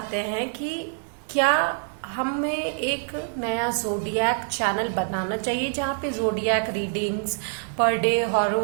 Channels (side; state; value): left; silent; digital silence